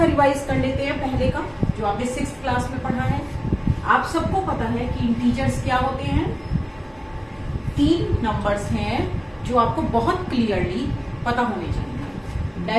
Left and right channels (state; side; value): identical; both; correlation 1.00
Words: रिवाइज कर लेते हैं पहले का जो आपने 6th क्लास में पढ़ा है। आप सबको पता है कि इंटीजर्स क्या होते हैं। 3 नंबर्स हैं जो आपको बहुत क्लियरली पता होने चाहिए।